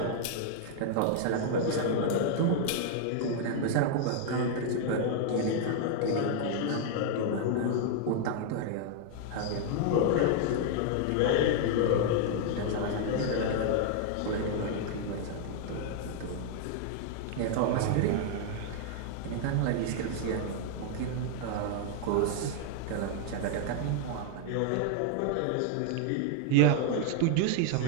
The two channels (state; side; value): different; both; correlation 0.00